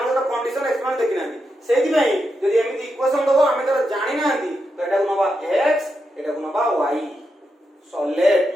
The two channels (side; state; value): both; normal; correlation 0.85